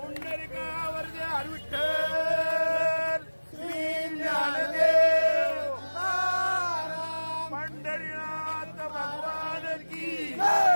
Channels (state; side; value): inverted; both; correlation -1.00